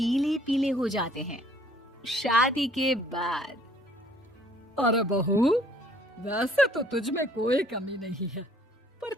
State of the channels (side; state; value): both; normal; correlation 0.60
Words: पीले हो जाते हैं। शादी के बाद। अरे बहू, वैसे तो तुझ में कोई कमी नहीं है, पर